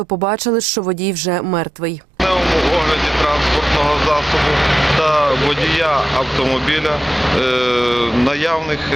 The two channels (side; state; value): both; normal; correlation 0.90